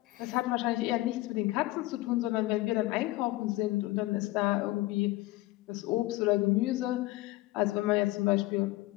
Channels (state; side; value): quieter; right; 18.9 dB